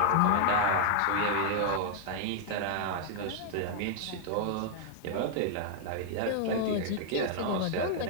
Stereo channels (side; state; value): both; different; correlation -0.01